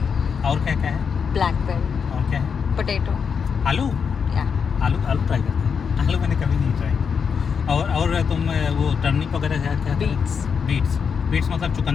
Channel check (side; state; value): right; quieter; 6.4 dB